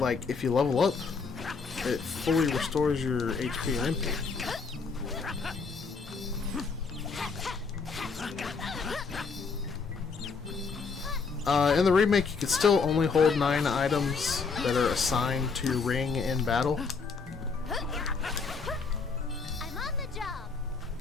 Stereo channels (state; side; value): quieter; right; 4.9 dB